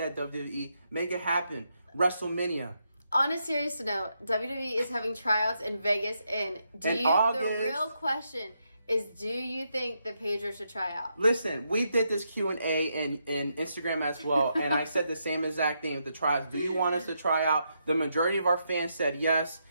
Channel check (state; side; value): inverted; both; correlation -0.81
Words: WWE. Make it happen. WrestleMania. On a serious note, WWE is having tryouts in Vegas the real question is, do you think that Pedro should try out? Listen, we did this Q&A in Instagram as well, and I said the same exact thing with the tryouts. Do you want us to try out? The majority of our fans said yes,